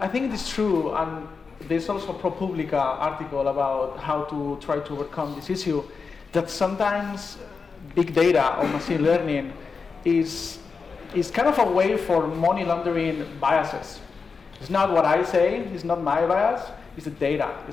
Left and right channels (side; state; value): right; quieter; 5.0 dB